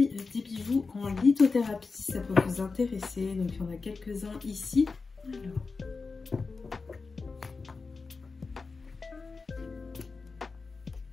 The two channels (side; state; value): right; quieter; 4.3 dB